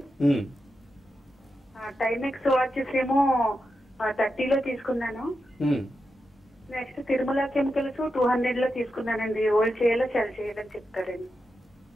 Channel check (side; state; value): both; normal; correlation 0.88